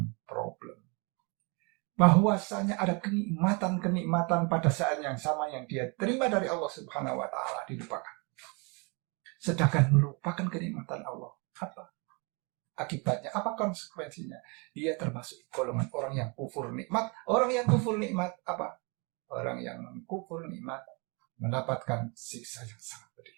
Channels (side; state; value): left; quieter; 31.7 dB